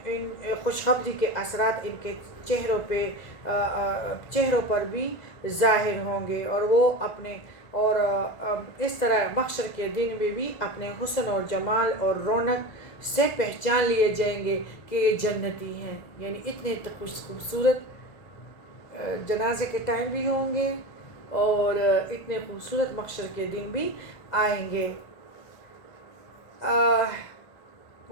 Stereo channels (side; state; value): right; late; 2.1 ms